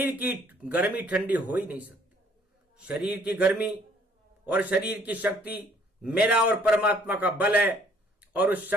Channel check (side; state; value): both; normal; correlation 0.61